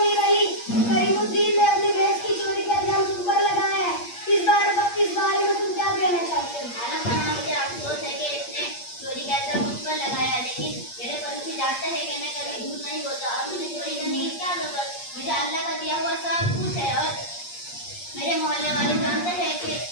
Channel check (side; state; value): right; late; 8.5 ms